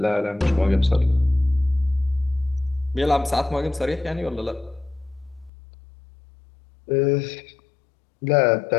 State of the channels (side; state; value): right; drops out; at 5.5 s